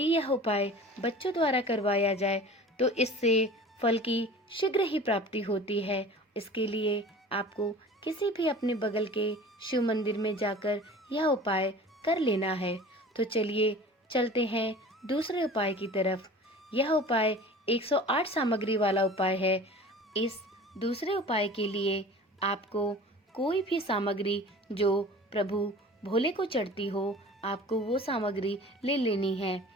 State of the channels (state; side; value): normal; both; correlation 0.41